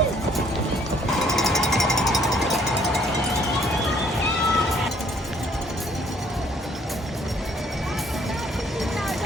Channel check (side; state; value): both; normal; correlation 0.62